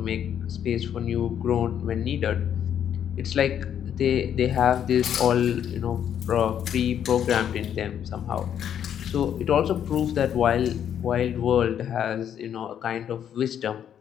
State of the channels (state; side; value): quieter; right; 9.3 dB